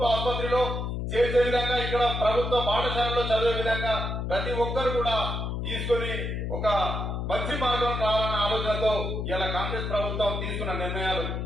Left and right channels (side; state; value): left; noise; hum, 3 dB below the sound